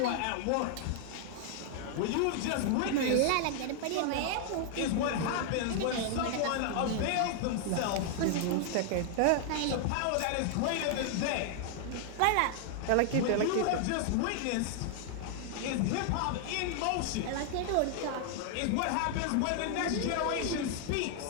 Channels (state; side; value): different; both; correlation 0.00